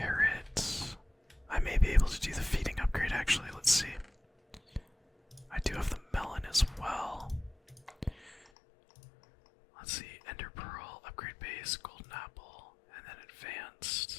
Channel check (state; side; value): drops out; right; at 8.4 s